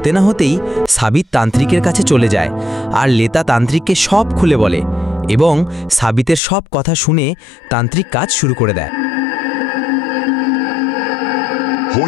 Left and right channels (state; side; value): drops out; right; at 6.4 s